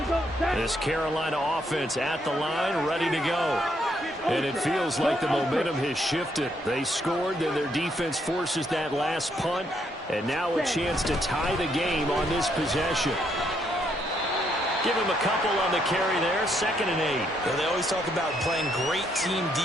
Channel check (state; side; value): normal; both; correlation 0.74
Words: go. This Carolina offense at the line, ready to go. And it feels like the momentum has shifted. They scored, then their defense forces that last punt, and now a chance to tie the game on this possession. Give him a couple on the carry there, 2nd and 8. Yeah, they always talk about playing great team